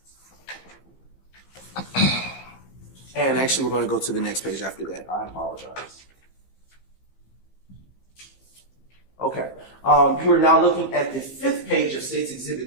And actually, we're going to go to the next page after that. I apologize. Okay. You are now looking at the fifth page of State's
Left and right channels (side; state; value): right; late; 15 ms